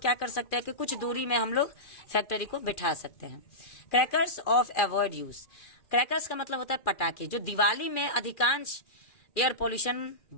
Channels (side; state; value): right; late; 2.4 ms